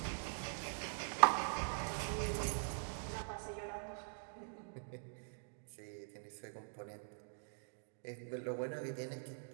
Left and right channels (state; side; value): silent; left; digital silence